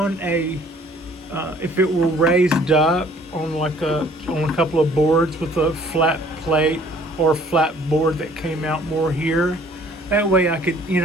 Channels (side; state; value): both; normal; correlation 0.57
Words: if it were raised up on on a couple of boards with a flat plate or flat board that came out more here, that way I could,